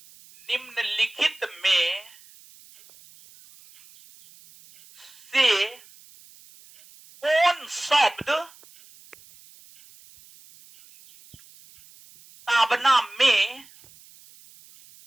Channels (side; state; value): right; noise; hiss, 25 dB below the sound